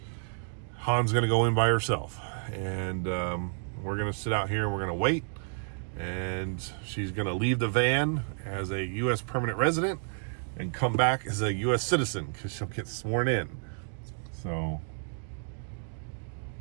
Han's gonna go in by herself, and we're gonna sit out here and we're gonna wait, and she's gonna leave the van as a U.S. permanent resident and come back as a U.S. citizen, because she'll get sworn in. So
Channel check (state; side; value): silent; left; 57 dB below the other